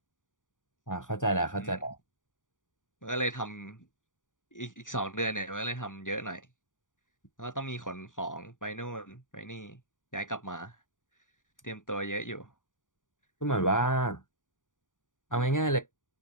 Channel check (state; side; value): late; right; 0.88 ms